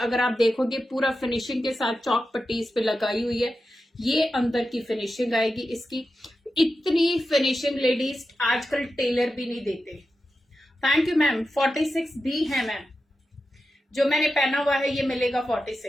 आप देखोगे पूरा फिनिशिंग के साथ चौक पट्टी इस पे लगाई हुई है। ये अंदर की फिनिशिंग आएगी इसकी। इतनी फिनिशिंग लेडीज आजकल टेलर भी नहीं देते। Thank you ma'am. 46 भी है मैम, जो मैंने पहना हुआ है ये मिलेगा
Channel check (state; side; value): normal; both; correlation 0.91